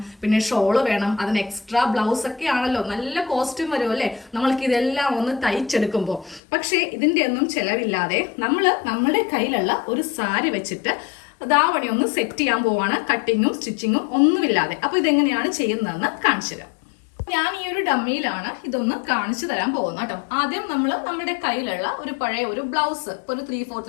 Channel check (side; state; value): right; drops out; at 6.4 s